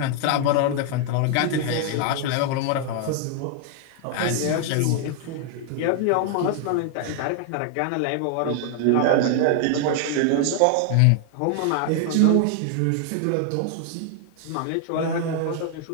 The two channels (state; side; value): different; both; correlation 0.00